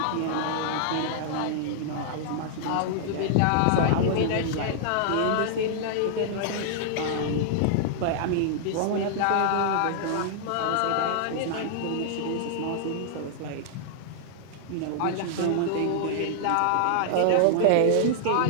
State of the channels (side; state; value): both; different; correlation -0.01